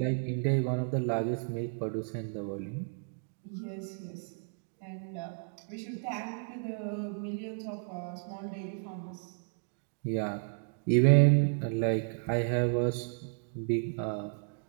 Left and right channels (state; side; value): silent; left; 56 dB below the other